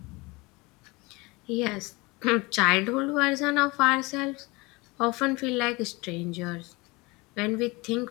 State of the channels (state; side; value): quieter; right; 24.4 dB